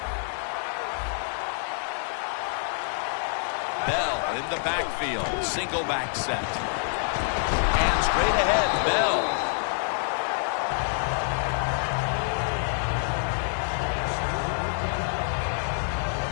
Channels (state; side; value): silent; right; digital silence